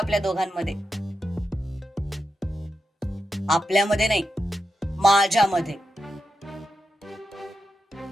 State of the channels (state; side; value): normal; both; correlation 0.87